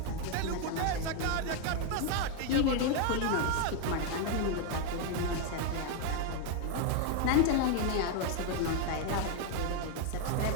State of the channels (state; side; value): different; both; correlation 0.01